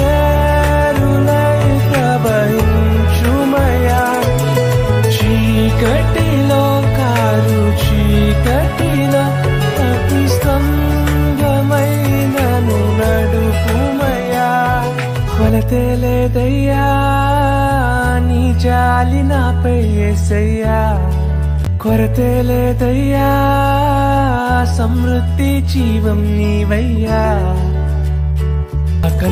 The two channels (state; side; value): identical; both; correlation 1.00